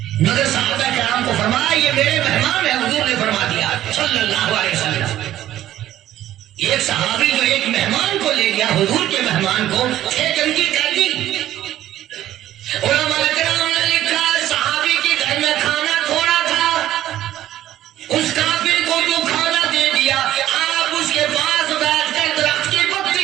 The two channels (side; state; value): left; quieter; 13.1 dB